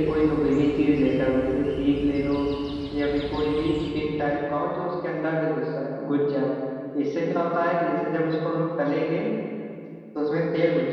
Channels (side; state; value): both; identical; correlation 1.00